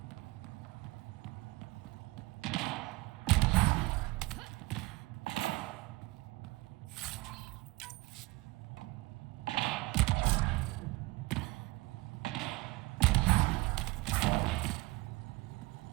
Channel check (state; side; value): quieter; left; 21.6 dB